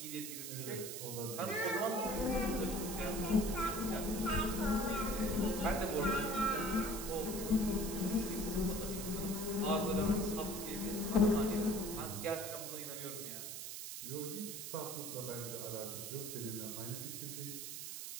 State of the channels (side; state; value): right; noise; hiss, 7 dB below the sound